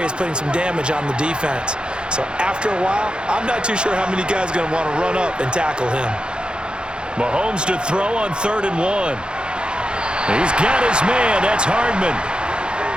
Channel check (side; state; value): left; late; 0.051 ms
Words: is putting some damage on the defense. So after a while, I'm not too sure how many guys are going to want to run up and tackle him. Mahomes to throw on 3rd and 1. He's got his man. That's Hardman.